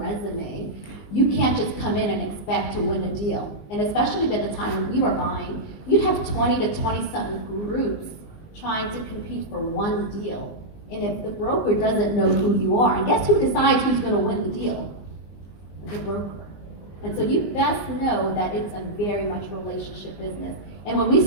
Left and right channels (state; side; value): late; right; 19 ms